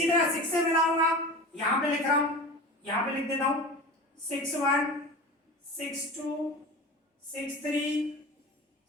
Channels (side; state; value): both; normal; correlation 0.32